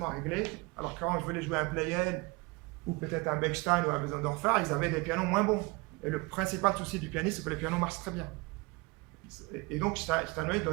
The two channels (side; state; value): left; quieter; 25.9 dB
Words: réglés, alors que quand je voulais jouer un Pleyel, ou peut-être un Bechstein ou un Bösendorfer, ils avaient des pianos moins bons. Et le principal souci du pianiste, c'est que les pianos marchent très bien. Et donc, Steinway